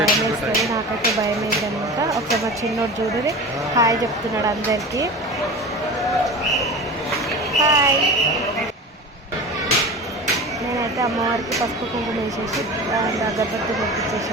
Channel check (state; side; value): normal; both; correlation 0.32